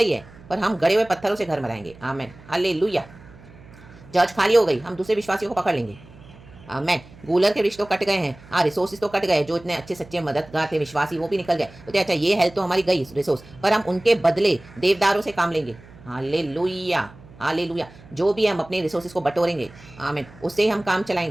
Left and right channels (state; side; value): noise; right; hum, 22 dB below the sound